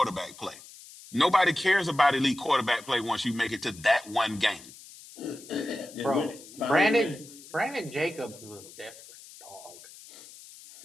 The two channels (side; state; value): left; noise; hiss, 19 dB below the sound